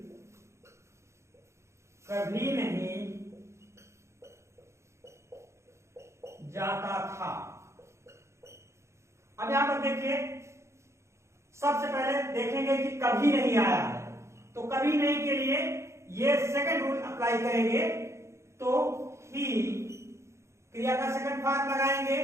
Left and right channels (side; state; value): left; late; 0.14 ms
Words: कभी नहीं जाता था। अब यहां पर देखिए, सबसे पहले देखेंगे कि कभी नहीं आया है, तो कभी नहीं के लिए ये सेकंड रूल अप्लाई करेंगे, तो ही क्रिया का सेकंड फॉर्म लगाएंगे,